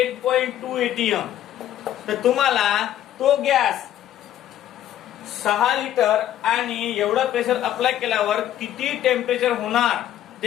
atm. तर तुम्हाला तो गॅस 6 लिटर आणि एवढं प्रेशर अप्लाय केल्यावर किती टेम्परेचर होणार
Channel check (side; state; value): right; quieter; 11.8 dB